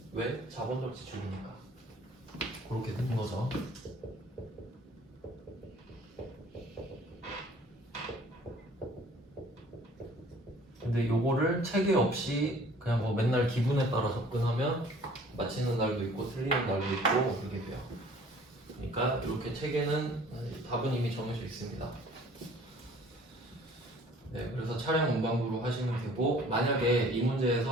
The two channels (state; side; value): normal; both; correlation 0.52